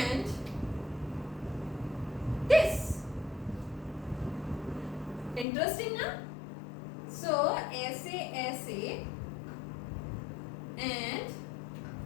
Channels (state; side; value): drops out; right; at 5.5 s